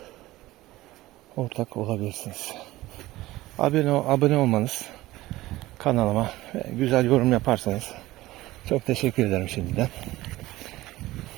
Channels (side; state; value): left; quieter; 17.5 dB